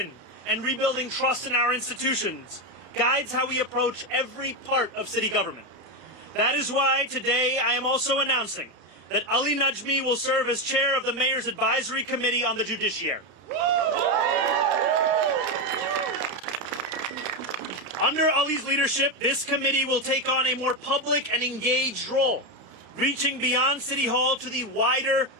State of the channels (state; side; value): late; left; 32 ms